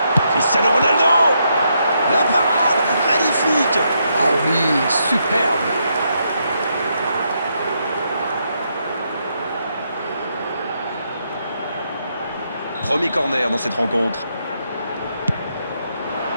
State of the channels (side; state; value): both; inverted; correlation -0.78